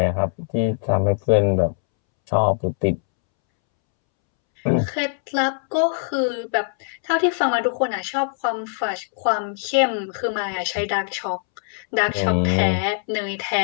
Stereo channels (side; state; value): right; silent; 64 dB below the other